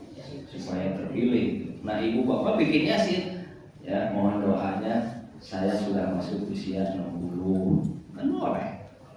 supaya terpilih. Nah, ibu bapak bikin Yasin. Ya, mohon doanya saya sudah masuk usia 60. Kan boleh.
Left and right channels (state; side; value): identical; both; correlation 1.00